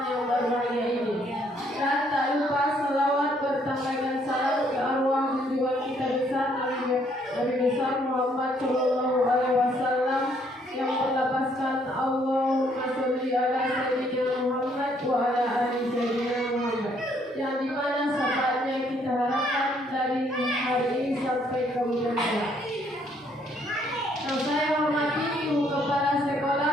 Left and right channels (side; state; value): both; normal; correlation 0.67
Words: yang berbahagia ini. Dan tak lupa selawat bertambahkan salam ke arwah junjungan kita besar Nabi besar Muhammad Shallallahu Alaihi Wasallam yang berlapaskan Allahumma sholli ala sayyidina Muhammad wa ala ali sayyidina Muhammad, yang dimana syafaatnya kita harapkan dari hari ini sampai kemudian hari. Yang saya hormati Ibu Kepala Sekolah